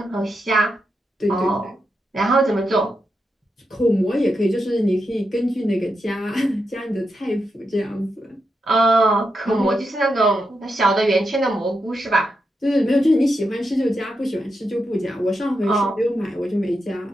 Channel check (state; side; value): normal; both; correlation 0.85